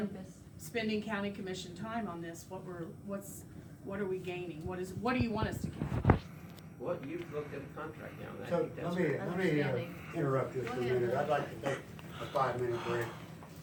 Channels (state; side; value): identical; both; correlation 1.00